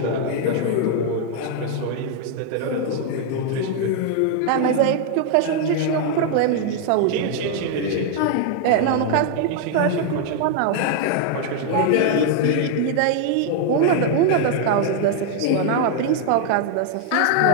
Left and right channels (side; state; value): both; different; correlation 0.00